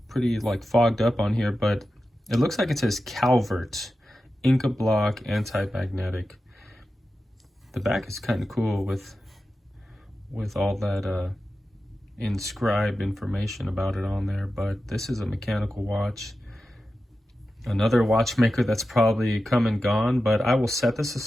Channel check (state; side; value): normal; both; correlation 0.92